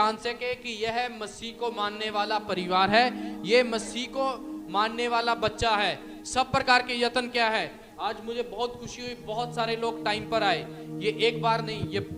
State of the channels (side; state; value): both; identical; correlation 1.00